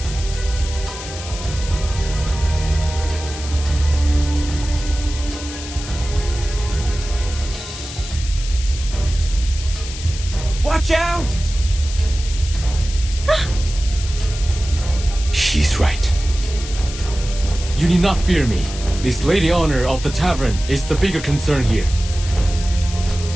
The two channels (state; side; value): noise; left; hiss, 11 dB below the sound